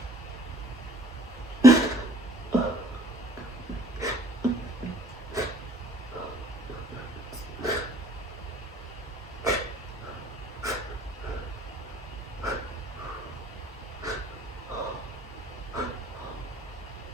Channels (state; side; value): normal; both; correlation 0.55